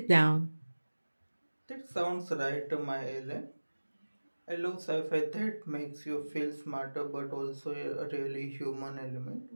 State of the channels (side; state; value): both; inverted; correlation -1.00